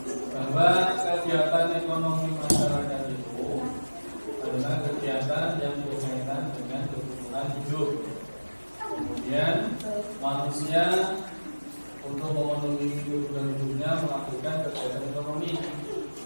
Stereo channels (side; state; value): both; inverted; correlation -1.00